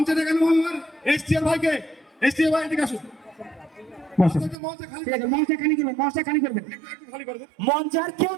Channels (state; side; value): drops out; left; at 4.5 s